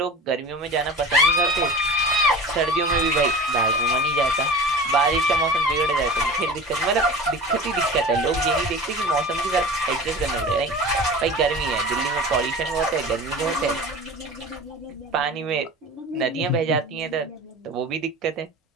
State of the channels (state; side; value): normal; both; correlation 0.36